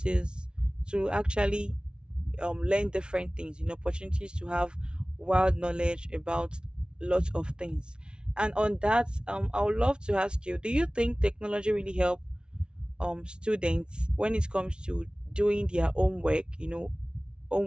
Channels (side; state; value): left; late; 0.055 ms